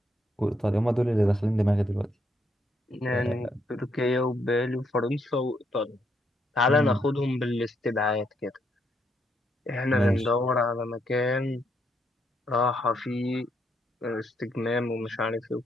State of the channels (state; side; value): normal; both; correlation 0.76